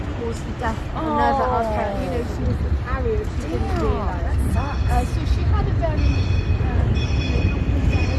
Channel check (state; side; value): identical; both; correlation 1.00